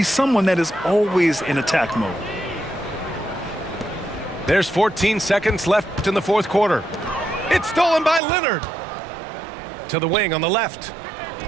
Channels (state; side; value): drops out; left; at 8.2 s